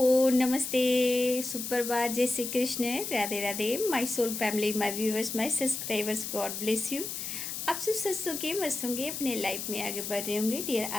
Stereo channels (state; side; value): noise; left; hiss, 5 dB below the sound